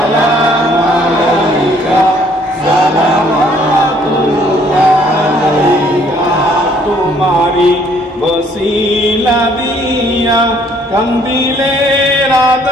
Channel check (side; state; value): both; normal; correlation 0.62